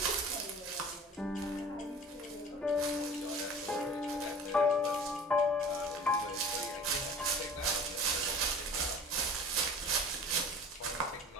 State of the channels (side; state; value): both; normal; correlation 0.42